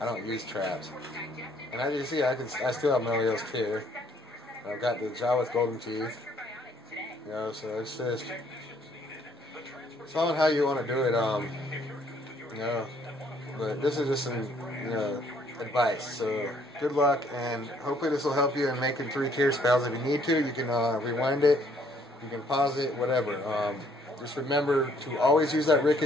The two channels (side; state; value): both; normal; correlation 0.65